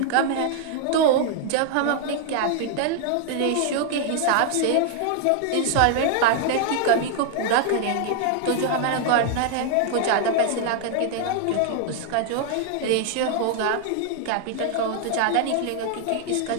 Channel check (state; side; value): different; both; correlation 0.00